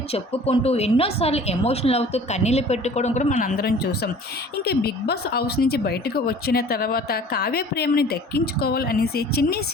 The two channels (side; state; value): both; normal; correlation 0.47